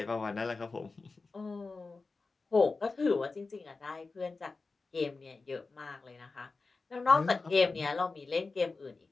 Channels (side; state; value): right; quieter; 3.9 dB